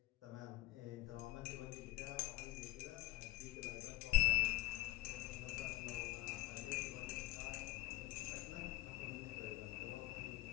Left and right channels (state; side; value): quieter; right; 18.0 dB